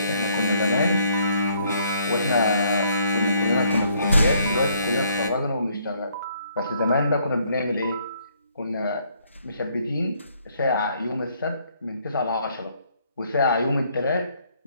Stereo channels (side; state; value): both; inverted; correlation -0.67